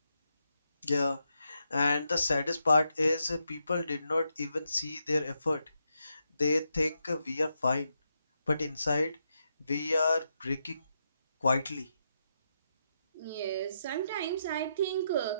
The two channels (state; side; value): inverted; both; correlation -0.83